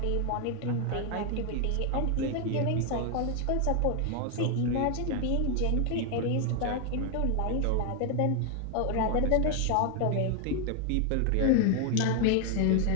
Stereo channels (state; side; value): different; both; correlation 0.00